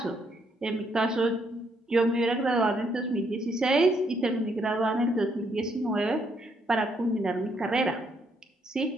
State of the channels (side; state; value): both; normal; correlation 0.73